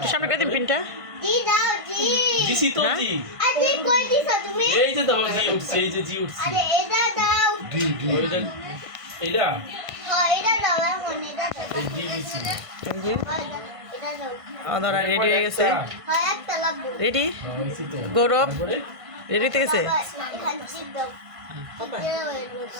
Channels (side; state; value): left; late; 1.5 ms